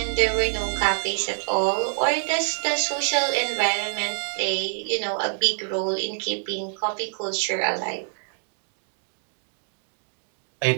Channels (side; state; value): left; silent; 61 dB below the other